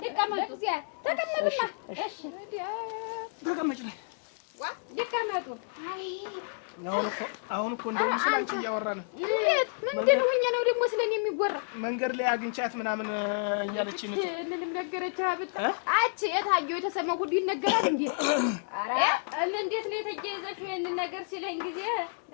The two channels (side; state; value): right; silent; 58 dB below the other